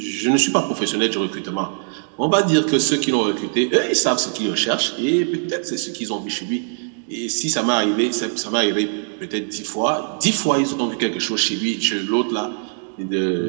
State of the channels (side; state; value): left; silent; 62 dB below the other